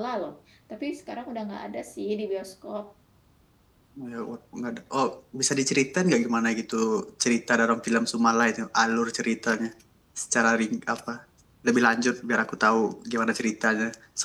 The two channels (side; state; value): both; identical; correlation 1.00